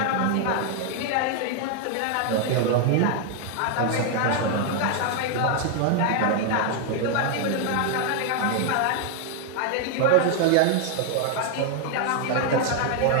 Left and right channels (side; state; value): both; different; correlation 0.00